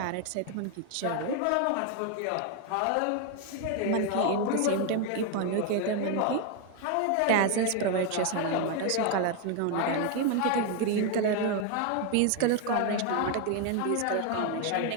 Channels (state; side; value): different; both; correlation 0.01